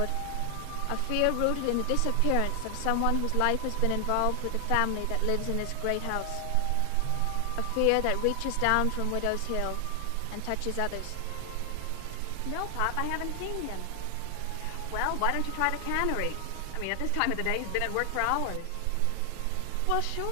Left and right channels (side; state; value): both; different; correlation 0.00